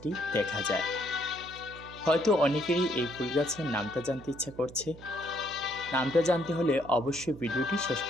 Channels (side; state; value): right; noise; hum, 17 dB below the sound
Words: দেখা যায়। হয়তো অনেকেরই এই ফুল গাছের নামটা জানতে ইচ্ছা করছে। নামটা জানতে হলে অবশ্যই ভিডিওটি শেষ